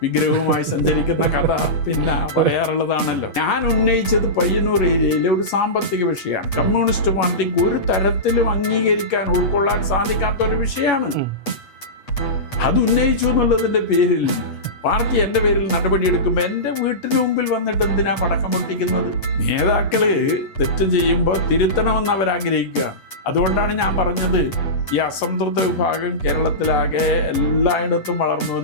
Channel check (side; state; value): right; late; 8.3 ms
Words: വിഗ്രഹവുമായി സഞ്ചരിക്കുന്ന കഥ പിന്നെ പറയാറുള്ളതാണല്ലോ. ഞാൻ ഉന്നയിച്ചത് പയ്യന്നൂർ ഏരിയയിലെ ഒരു സാമ്പത്തിക വിഷയമാണ്. കമ്മ്യൂണിസ്റ്റ് പാർട്ടിക്ക് ഒരു തരത്തിലും അംഗീകരിക്കാൻ, ഉൾക്കൊള്ളാൻ സാധിക്കാത്ത ഒരു വിഷയമാണ്. അത് ഉന്നയിച്ചു എന്നുള്ളതിന്റെ പേരിൽ പാർട്ടി എൻ്റെ പേരിൽ നടപടിയെടുക്കുമ്പോൾ എൻ്റെ വീട്ടിന് മുമ്പിൽ വന്നിട്ട് എന്തിനാ പടക്കം പൊട്ടിക്കുന്നത്? നേതാക്കള് തെറ്റ് ചെയ്യുമ്പോൾ തിരുത്തണമെന്ന് അവരാഗ്രഹിക്കുകയാണ്. അതുകൊണ്ടാണ് ഞാൻ പറഞ്ഞത്, ഈ അസംതൃപ്ത വിഭാഗം കേരളത്തിലാകെ എല്ലായിടത്തും വളർന്നു